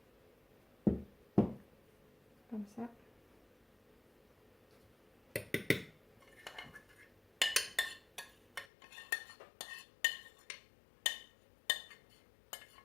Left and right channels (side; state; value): right; drops out; at 8.7 s